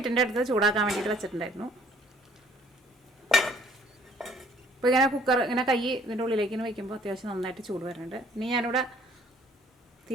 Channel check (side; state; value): both; normal; correlation 0.59